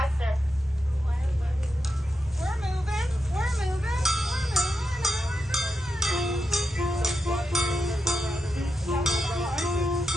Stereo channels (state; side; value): normal; both; correlation 0.87